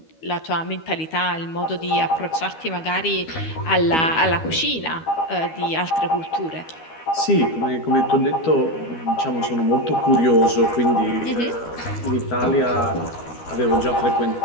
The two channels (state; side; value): late; right; 12 ms